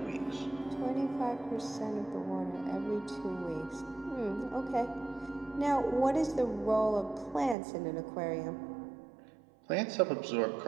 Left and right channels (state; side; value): drops out; left; at 7.6 s